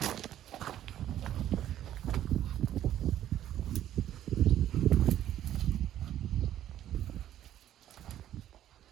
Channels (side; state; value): left; quieter; 11.8 dB